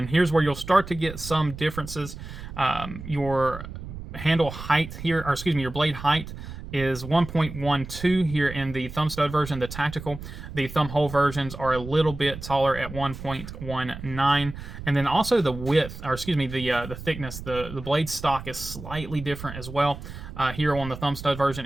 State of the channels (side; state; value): right; noise; rumble, 11 dB below the sound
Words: here's where you'll start to get some differences. Your handle height here, or excuse me, your blade height is 1.12 here in the thumb stud version, the tactical. The thumb hole versions are a little bit taller at 1.19. And then also the width, or excuse me, the thickness, the blade stock is slightly different as well. Here on the thumb stud version,